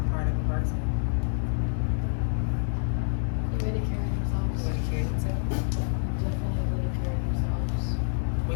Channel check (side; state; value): right; silent; 60 dB below the other